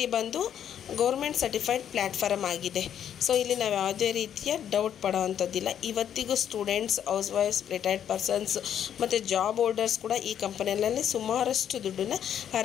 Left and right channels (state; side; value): quieter; right; 9.4 dB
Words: ಬಂದು ಗೌರ್ಮೆಂಟ್ ಸರ್ಟಿಫೈಡ್ ಪ್ಲ್ಯಾಟ್ಫಾರ್ಮ್ ಆಗಿದೆ. ಸೊ ಇಲ್ಲಿ ನಾವು ಯಾವುದೇ ರೀತಿಯ ಡೌಟ್ ಪಡೋವಂಥದ್ದಿಲ್ಲ. ಇವತ್ತಿಗೂ students, house wives, retired persons ಮತ್ತು ಜಾಬ್ ಹೋಲ್ಡರ್ಸ್ ಕೂಡ ಈ ಕಂಪನಿಯಲ್ಲಿ ಸುಮಾರಷ್ಟು ದುಡ್ಡನ್ನು